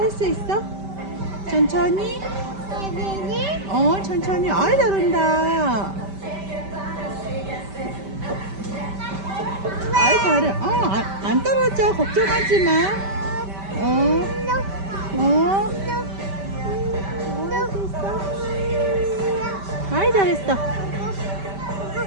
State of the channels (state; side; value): late; left; 5.1 ms